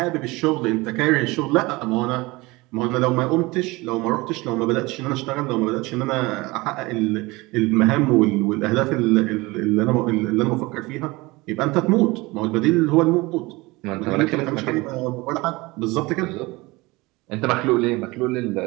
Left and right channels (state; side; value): quieter; left; 22.5 dB